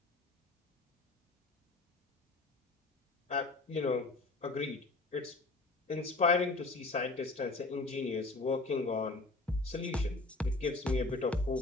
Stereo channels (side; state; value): right; quieter; 3.3 dB